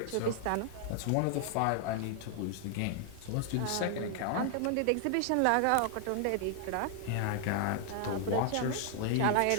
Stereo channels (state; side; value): different; both; correlation 0.00